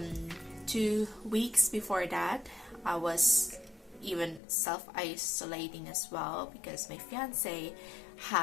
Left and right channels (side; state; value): right; drops out; at 4.4 s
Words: 2 weeks before that, I was even self-isolating as well because my fiance